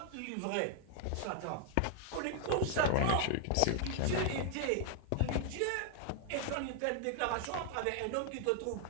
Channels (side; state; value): both; different; correlation 0.00